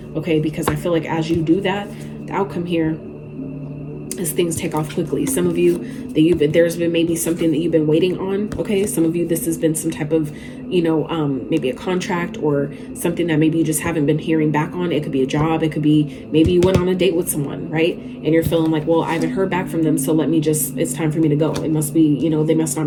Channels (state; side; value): identical; both; correlation 1.00